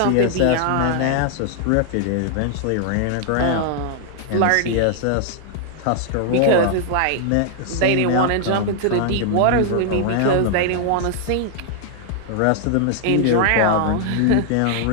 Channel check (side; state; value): both; different; correlation 0.00